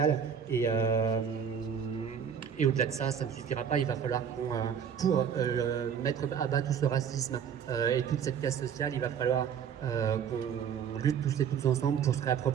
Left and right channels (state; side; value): quieter; left; 7.7 dB